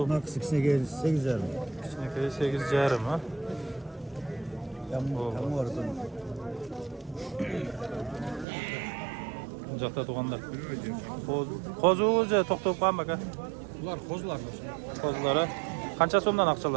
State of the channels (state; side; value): drops out; left; at 8.5 s